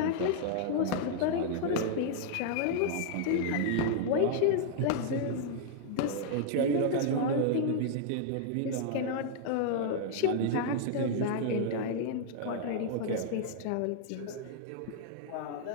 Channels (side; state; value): both; different; correlation -0.01